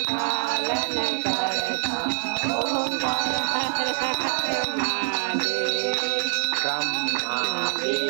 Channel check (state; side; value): silent; left; digital silence